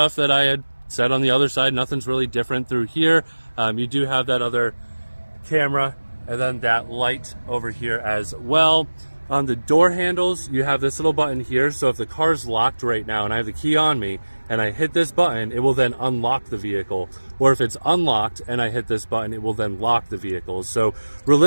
that I had said on the other side. Nothing's really different through here. You do have that other camera and then that light over here as well. On the door handles, you have this little button here. So if the car's locked right now and I have the key on me and I hit this button, it will then unlock the vehicle. Or if it's unlocked and I hit this button, it will then lock the vehicle. So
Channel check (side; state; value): both; inverted; correlation -1.00